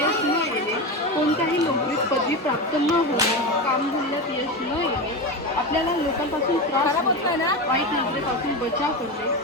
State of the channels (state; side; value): normal; both; correlation 0.20